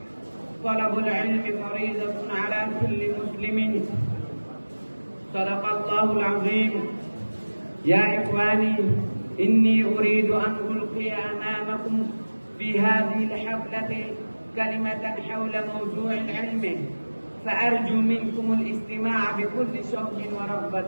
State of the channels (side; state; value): both; inverted; correlation -1.00